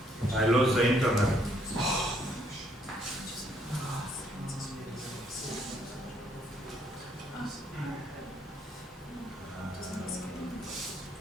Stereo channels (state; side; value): normal; both; correlation 0.69